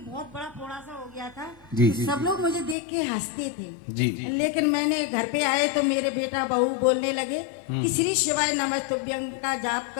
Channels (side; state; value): right; drops out; at 2.8 s